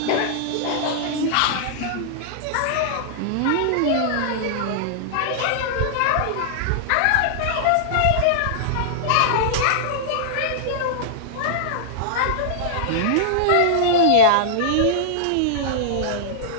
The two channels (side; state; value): both; different; correlation -0.01